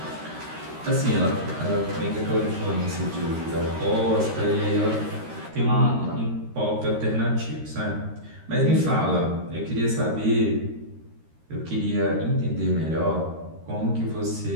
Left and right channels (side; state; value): left; late; 13 ms